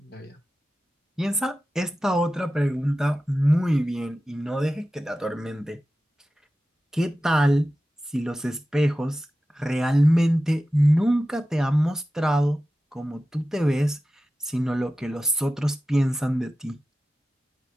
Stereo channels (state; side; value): normal; both; correlation 0.94